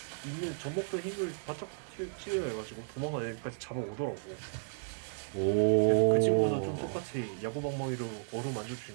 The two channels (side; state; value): left; silent; digital silence